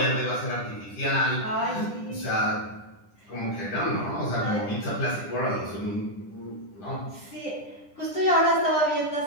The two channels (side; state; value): right; late; 10 ms